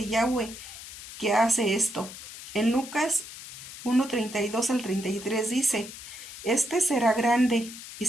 Yahweh, que hace esto. En Lucas 1:32 al 33 dice, este será grande y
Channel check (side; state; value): left; noise; hiss, 13 dB below the sound